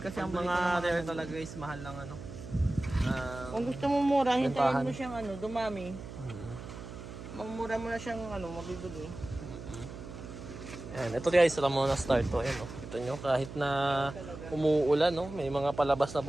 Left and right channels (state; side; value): noise; right; hum, 12 dB below the sound